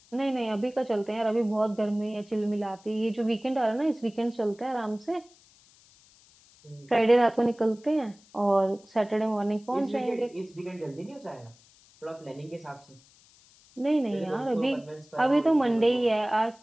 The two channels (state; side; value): noise; left; hiss, 28 dB below the sound